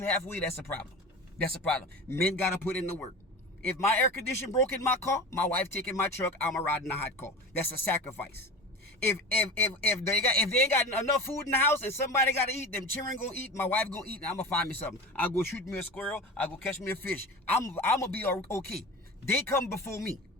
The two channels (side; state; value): both; normal; correlation 0.31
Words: halfway. That's a problem. That's a problem. Men got to put in the work. If my air conditioner broke in my car, my wife taking my truck, I'm a riding a hot car. That's a sacrifice. If they ain't got enough food in the house and somebody got to eat, them children gonna eat, my wife gonna eat, and I'm gonna find me something. I'll go shoot me a squirrel. I'll go catch me a fish. I'm gonna be okay. They come before me